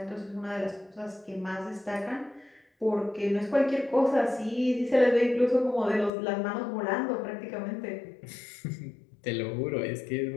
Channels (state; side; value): drops out; right; at 6.1 s